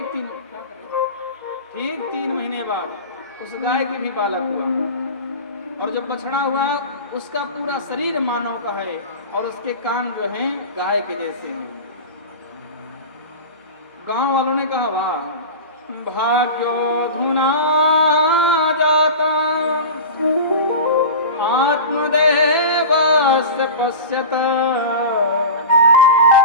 3 महीने बाद उस गाय के भी बालक हुआ और जब बछड़ा हुआ उसका पूरा शरीर मानव का है और उसके कान जो हैं गाय के जैसे हैं। गांव वालों ने कहा वाह भाग्योधुना जाता आत्मदेवस्य पश्यत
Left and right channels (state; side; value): inverted; both; correlation -0.30